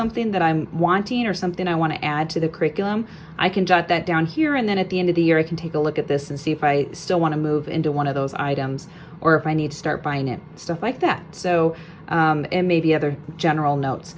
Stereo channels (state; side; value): identical; both; correlation 1.00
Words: that I'm wanting, or something I want to add to the curriculum, I can jot that down here, and then at the end of the year I can take a look at this and see if I still want to move into one of those items, or if I need to start buying it, stuff like that. So and maybe other general notes.